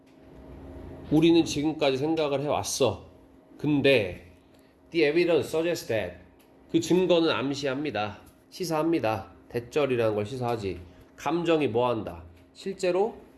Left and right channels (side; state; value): both; identical; correlation 1.00